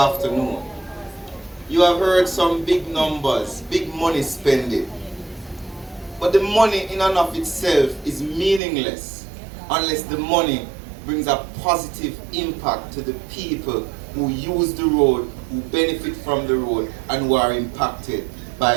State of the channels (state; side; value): drops out; left; at 8.6 s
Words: you have heard some big numbers, big money spending. But the money in and of itself is meaningless unless the money brings a positive impact to the people who use the road, who benefit from the road, and who are impacted